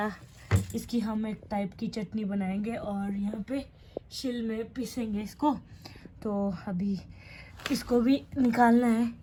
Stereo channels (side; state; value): both; identical; correlation 1.00